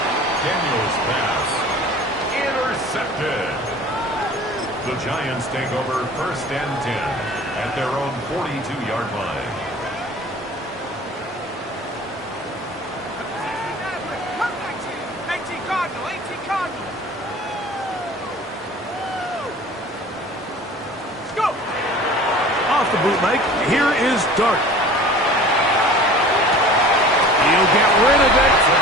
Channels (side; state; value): both; normal; correlation 0.44